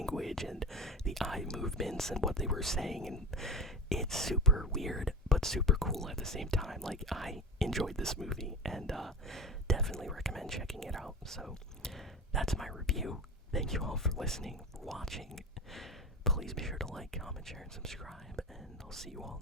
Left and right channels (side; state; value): both; normal; correlation 0.28